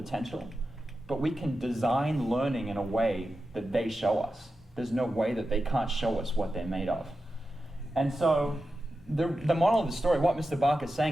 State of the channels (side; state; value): both; normal; correlation 0.91